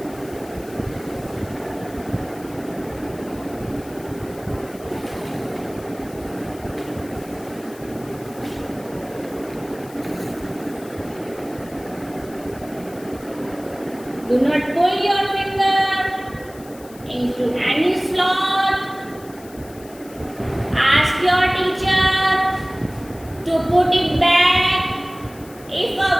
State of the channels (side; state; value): left; noise; hiss, 21 dB below the sound